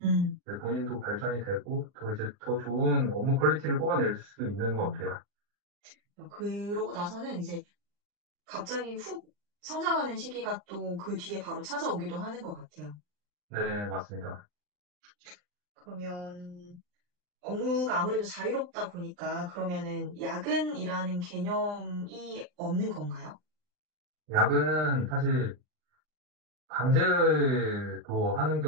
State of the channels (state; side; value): late; left; 39 ms